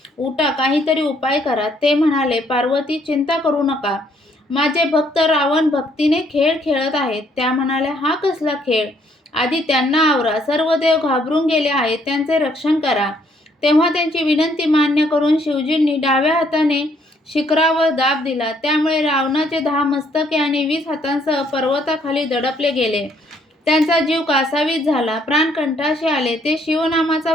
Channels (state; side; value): normal; both; correlation 0.67